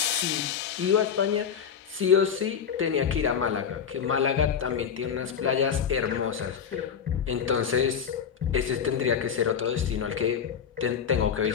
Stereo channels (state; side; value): quieter; right; 7.4 dB